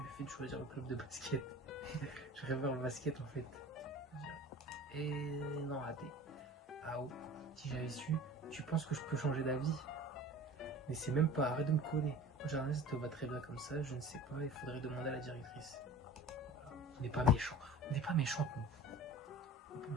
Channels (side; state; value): both; normal; correlation 0.40